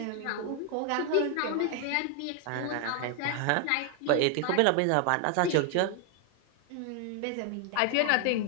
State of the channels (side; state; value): both; different; correlation 0.01